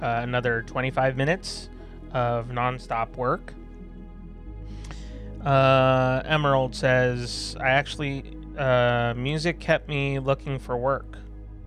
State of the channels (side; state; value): both; identical; correlation 1.00